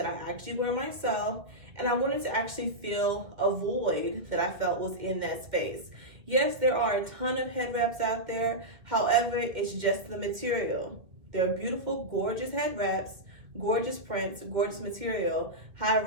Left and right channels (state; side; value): late; left; 1.9 ms